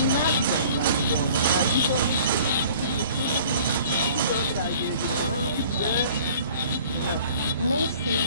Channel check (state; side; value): inverted; both; correlation -0.50